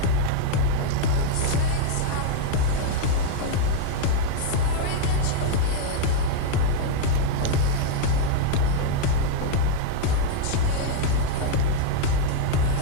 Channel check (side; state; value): both; different; correlation 0.00